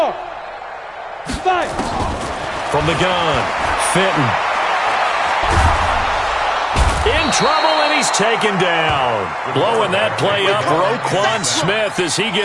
5. From the gun, Fenton. in trouble, and he's taken down. Blowing that play up, Roquan Smith, as he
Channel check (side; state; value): both; identical; correlation 1.00